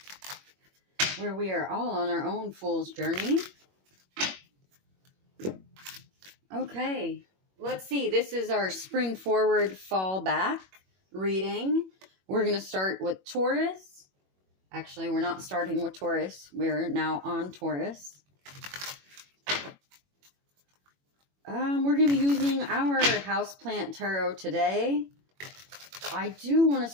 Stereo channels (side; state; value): left; late; 21 ms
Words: where we are all on our own fool's journey. Okay, let's see. This is our spring forward, fall back reading. We're going to start with Taurus. Actually, we're not starting with Taurus. We're now on Taurus. We're going to be using our houseplant tarot today. I do want to